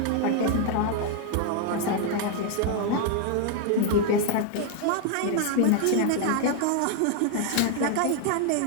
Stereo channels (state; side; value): different; both; correlation 0.01